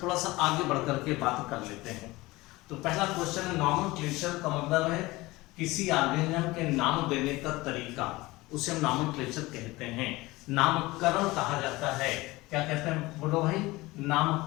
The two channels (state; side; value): quieter; right; 20.5 dB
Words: थोड़ा सा आगे बढ़ करके बात कर लेते हैं। तो पहला क्वेश्चन है नॉमेनक्लेचर का मतलब है किसी ऑर्गेनिज्म के नाम देने का तरीका, उसे हम नॉमेनक्लेचर कहते हैं। नामकरण कहा जाता है, क्या कहते हैं बोलो भाई,